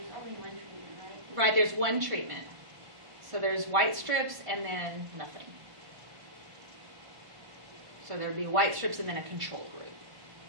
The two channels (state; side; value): late; left; 1.5 ms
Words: only one treatment, right? Right, there's one treatment. So there's white strips and then nothing. So there'd be white strips and then a control group.